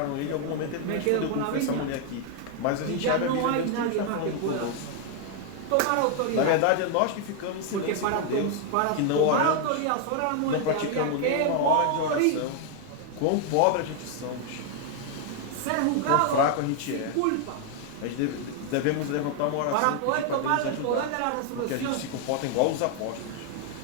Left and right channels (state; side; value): different; both; correlation 0.00